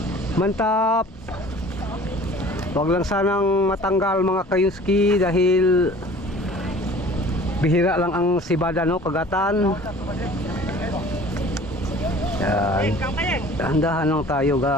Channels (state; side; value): normal; both; correlation 0.47